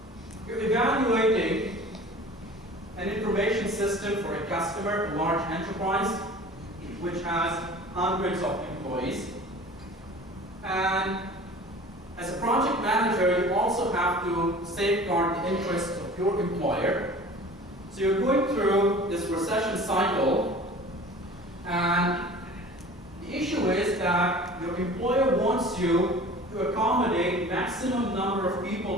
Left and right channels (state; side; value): normal; both; correlation 0.43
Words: You're evaluating an information system for a customer, a large enterprise, which has hundreds of employees. And as a project manager, you also have to safeguard the interests of your employer. So you're going through this recession cycle, and the issue is that your employer wants you to accommodate maximum number of